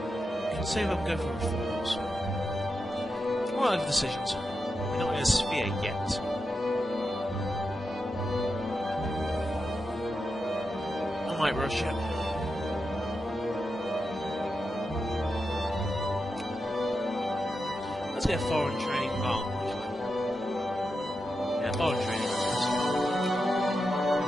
can see if I can go for reforms. What are the decisions? We're not in a sphere yet. I might rush it. Let's get foreign training. Oh, actually. Yeah, foreign training.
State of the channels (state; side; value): normal; both; correlation 0.88